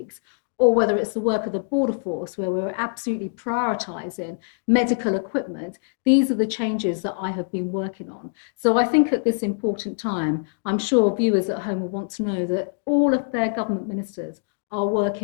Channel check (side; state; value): right; silent; digital silence